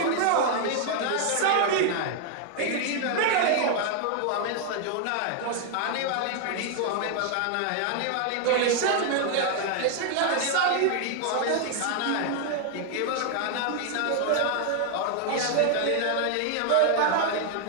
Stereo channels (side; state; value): both; different; correlation 0.00